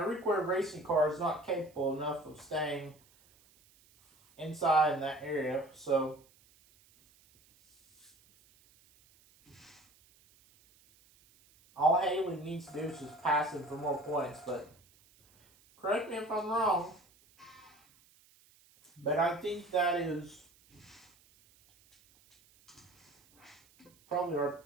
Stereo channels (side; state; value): right; noise; hiss, 30 dB below the sound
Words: required racing car is not capable enough of staying inside in that area. So all Haley needs to do is just pass him for more points, but Correct me if I'm wrong, but I think that is probably our